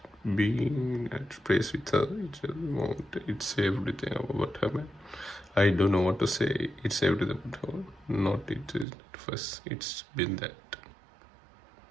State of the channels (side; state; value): left; drops out; at 8.8 s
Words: being at place with her. It's everything about her. I don't know what to say. It's everything about her. Not it is not first. It's been that.